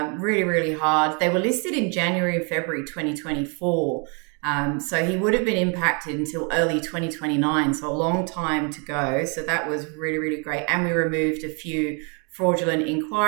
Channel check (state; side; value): quieter; left; 35.2 dB